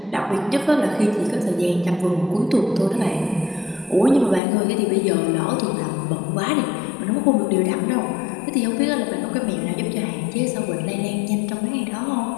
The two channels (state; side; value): drops out; right; at 4.4 s